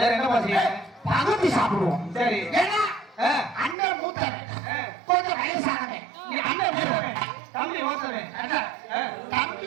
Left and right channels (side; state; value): left; drops out; at 3.8 s